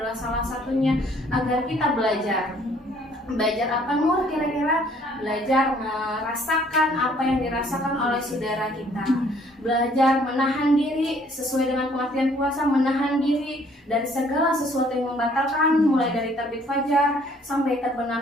salah satunya agar kita belajar apa Nur kira-kira? Belajar merasakan apa yang dirasakan oleh saudara kita, belajar menahan diri sesuai dengan pengertian puasa, menahan diri dari segala sesuatu yang membatalkan mulai dari terbit fajar sampai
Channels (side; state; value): both; normal; correlation 0.60